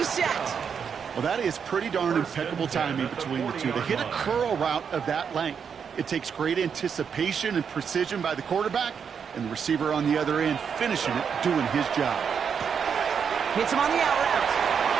Well, that is pretty darn impeccable timing between the two. To hit a curl route of that length, it takes great anticipation and precision by the quarterback, and the receiver on the other end finishing it, doing his job. Hits him on the out route.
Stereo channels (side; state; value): left; quieter; 6.9 dB